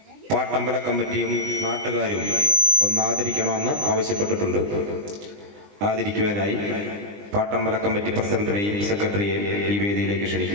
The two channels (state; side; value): late; left; 20 ms